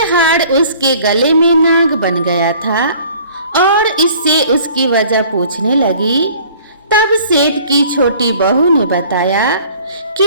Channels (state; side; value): inverted; both; correlation -0.51